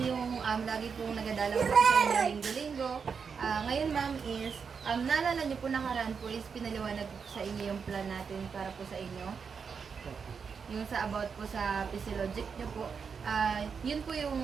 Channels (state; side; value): quieter; left; 6.0 dB